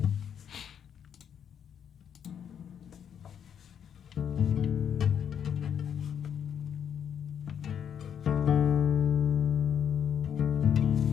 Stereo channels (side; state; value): right; quieter; 8.4 dB